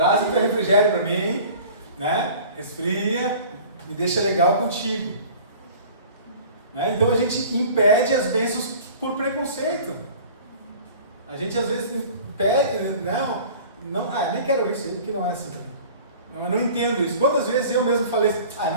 um refrigério para mim, Resfria, me deixa legal contigo. Né? Então a gente impede as bênçãos por preconceito. A gente às vezes impede, não, nem quero isso aí, porque não é assim. Eu não entendo isso. Quantas vezes eu mesmo falei assim,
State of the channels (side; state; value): both; inverted; correlation -0.44